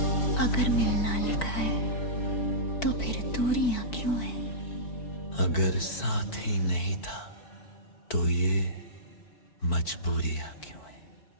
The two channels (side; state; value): right; late; 4.5 ms